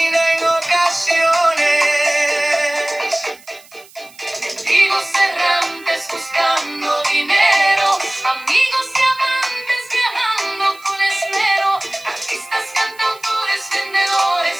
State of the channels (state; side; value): noise; right; hiss, 24 dB below the sound